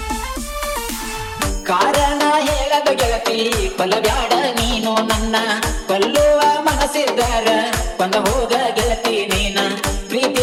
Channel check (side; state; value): both; identical; correlation 1.00